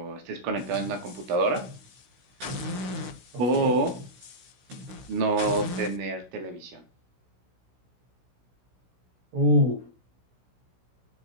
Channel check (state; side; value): late; left; 16 ms